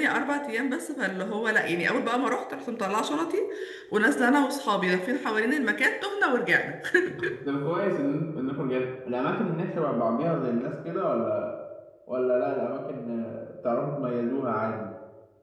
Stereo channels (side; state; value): both; identical; correlation 1.00